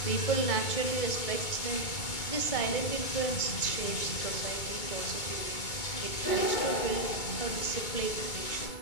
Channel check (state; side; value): late; right; 2.2 ms